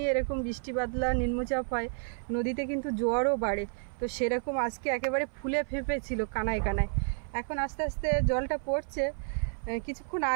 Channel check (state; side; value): silent; left; 55 dB below the other